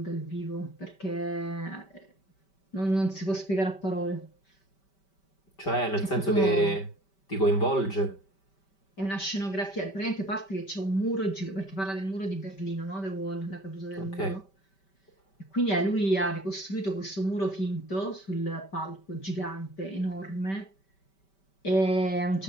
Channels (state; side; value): late; right; 5.2 ms